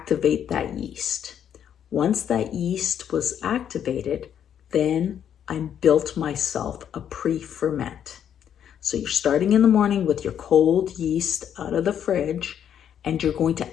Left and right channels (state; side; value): quieter; right; 9.2 dB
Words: that yeast. Once that yeast was activated, then I built myself a pre-ferment. So you're starting in the morning with your cold yeast out of the fridge, and you're going